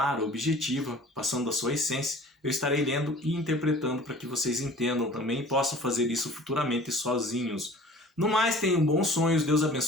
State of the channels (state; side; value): normal; both; correlation 0.46